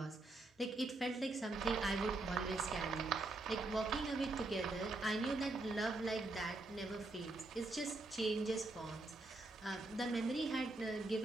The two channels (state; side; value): quieter; left; 3.0 dB